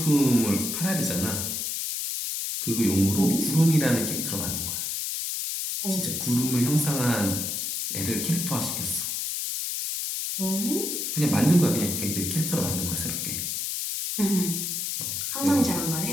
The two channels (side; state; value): left; noise; hiss, 2 dB below the sound